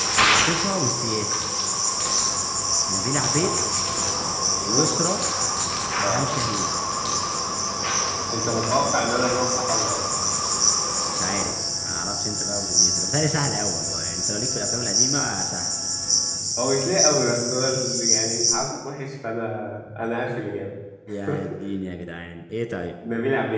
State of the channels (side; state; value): both; identical; correlation 1.00